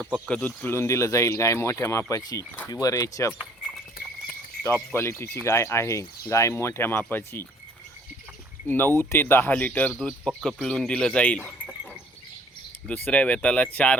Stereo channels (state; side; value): normal; both; correlation 0.58